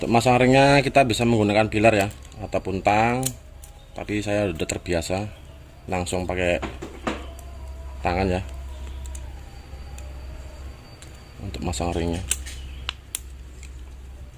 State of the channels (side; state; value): both; identical; correlation 1.00